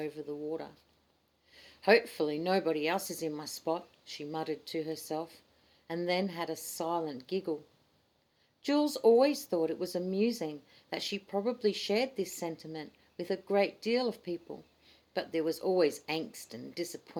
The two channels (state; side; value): identical; both; correlation 1.00